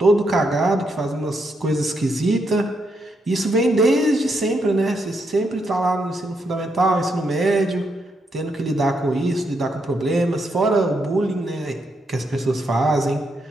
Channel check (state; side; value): normal; both; correlation 0.79